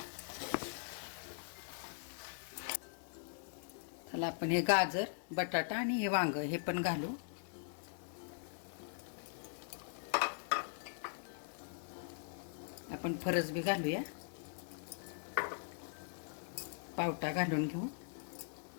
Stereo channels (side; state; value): right; silent; 50 dB below the other